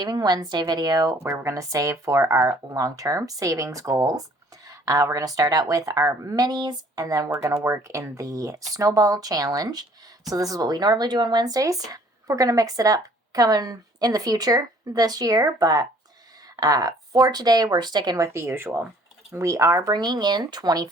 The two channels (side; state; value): both; normal; correlation 0.57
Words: Wednesday video where we're going to save for our long-term savings goals. We're going to start out with our minis and then we're going to work in the Snowball challenge. So this is what we normally do on Wednesdays. We're going to mix it up coming in the future this year, but for today we're sticking with the usual. We are bringing in